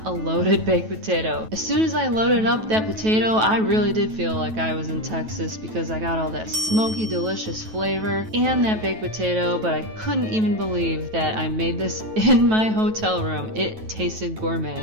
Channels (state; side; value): late; left; 9.2 ms